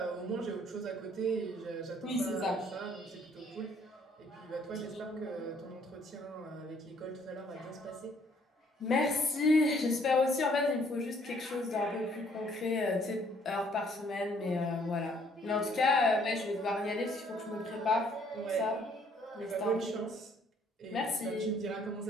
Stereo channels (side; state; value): both; normal; correlation 0.63